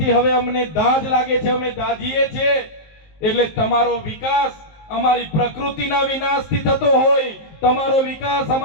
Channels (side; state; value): right; late; 19 ms